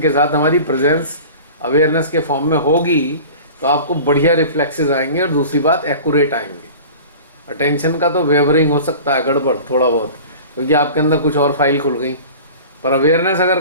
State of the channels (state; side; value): inverted; both; correlation -0.39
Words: के साथ, हमारी प्रेजेंस अवेयरनेस के फॉर्म में होगी तो आपको बढ़िया रिफ्लेक्सेस आएंगे, और दूसरी बात एक्यूरेट आएंगे। अटेंशन का तो वेवरिंग हो सकता है, गड़बड़ थोड़ा बहुत, क्योंकि आपके अंदर कुछ और फाइल खुल गई। पर अवेयरनेस